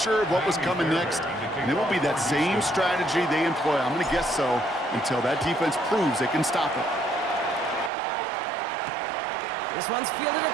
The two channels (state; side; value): drops out; left; at 7.9 s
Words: of what was coming next. And it will be that same strategy they employ, I'm going to guess so, until that defense proves they can stop it. This one's fielded at